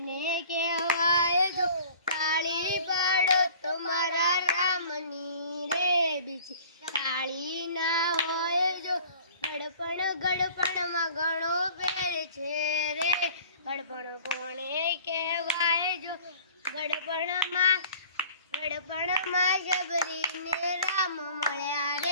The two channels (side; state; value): both; inverted; correlation -0.48